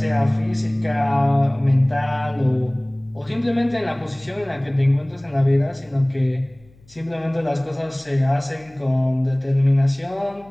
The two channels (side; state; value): left; noise; hum, 28 dB below the sound